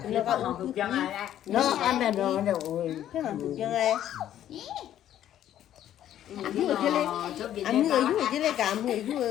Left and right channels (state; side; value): quieter; right; 11.5 dB